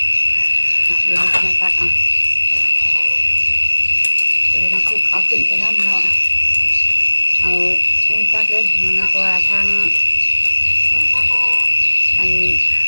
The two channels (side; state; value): both; inverted; correlation -1.00